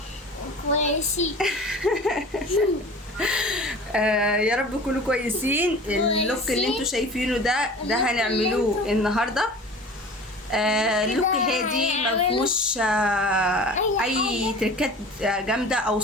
كويسين. يا رب تكونوا كويسين. اللوك اللي انتوا شايفينه ده هنعملوه النهارده. اللوك هادي مفهوش اي تركات جامده او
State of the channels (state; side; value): normal; both; correlation 0.40